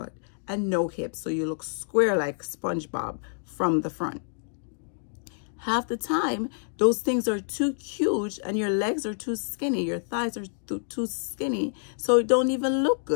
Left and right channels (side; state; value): right; silent; digital silence